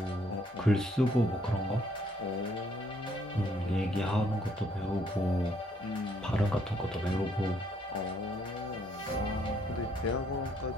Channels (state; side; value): normal; both; correlation 0.68